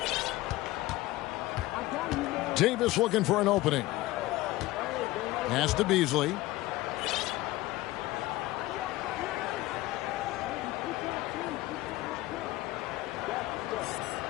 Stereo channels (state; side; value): quieter; right; 18.0 dB